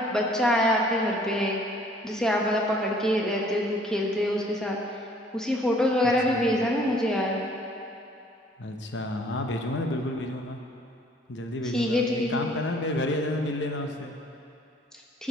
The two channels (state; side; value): normal; both; correlation 0.58